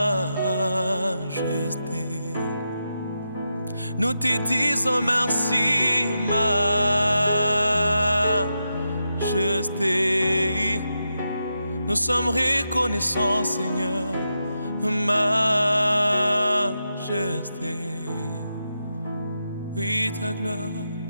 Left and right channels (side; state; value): both; inverted; correlation -0.87